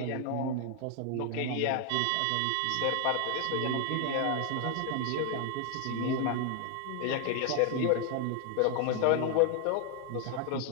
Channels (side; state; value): both; different; correlation 0.00